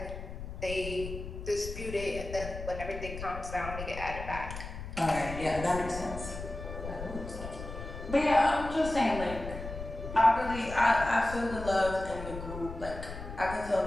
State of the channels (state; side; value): noise; left; rumble, 9 dB below the sound